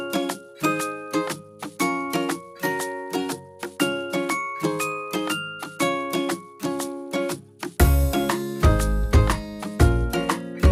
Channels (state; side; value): identical; both; correlation 1.00